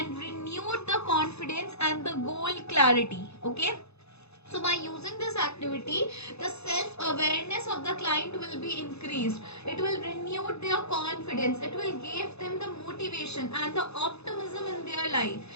renew the confidence and the goal clarity. Okay, so by using this activity, the self-awareness of the client will be increased. It will renew their confidence. It will give them the motivation and the optimism in their life.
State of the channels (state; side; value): late; right; 0.79 ms